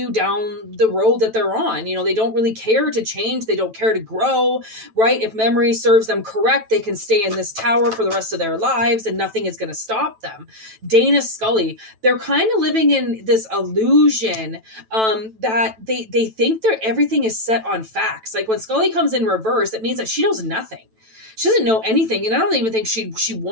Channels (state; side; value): late; left; 9.1 ms